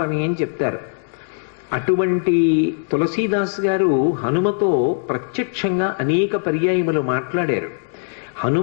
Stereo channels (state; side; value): silent; right; digital silence